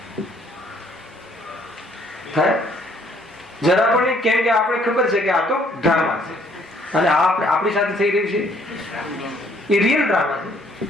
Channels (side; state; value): both; normal; correlation 0.63